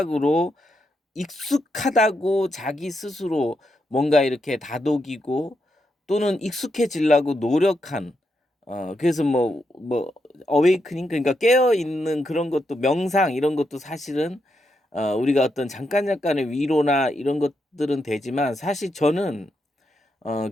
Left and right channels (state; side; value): normal; both; correlation 0.82